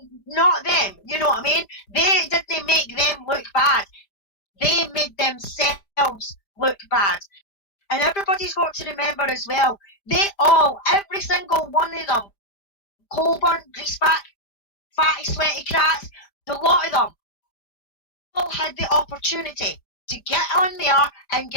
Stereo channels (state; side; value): late; right; 5.0 ms